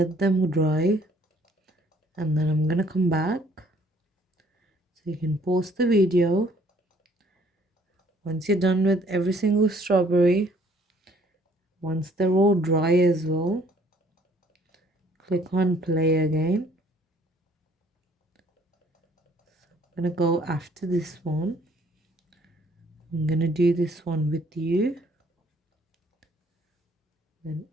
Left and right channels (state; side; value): normal; both; correlation 0.61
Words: them dry, and then I'm gonna come back so you can pause the video. Once you're done with every single strawberry, once they're all dry as well, click on play again. I'm gonna go after this one. I'm gonna do this one with you, then